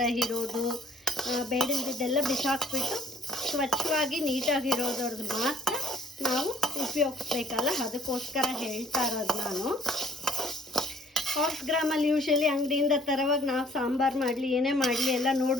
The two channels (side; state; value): both; normal; correlation 0.59